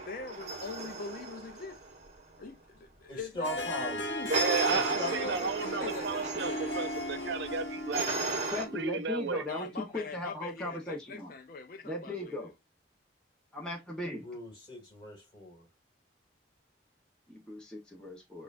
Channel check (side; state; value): both; normal; correlation -0.05